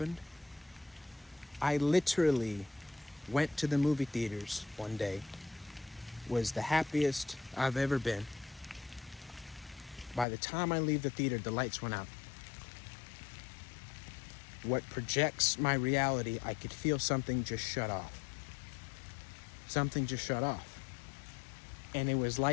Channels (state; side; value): drops out; right; at 10.2 s